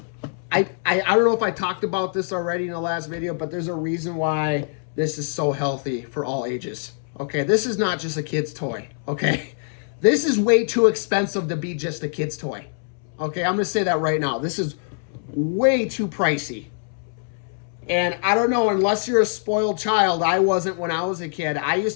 I don't know if I talked about this already in the last video, but there's a reason why this is so healthy for all ages. Okay, this is not just a kid's toy. Okay, this is way too expensive to be just a kid's toy. Okay, I'm gonna say that right now. This is way too pricey. And I don't know, unless you're a spoiled child. I wasn't when I was a kid. I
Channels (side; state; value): right; silent; 63 dB below the other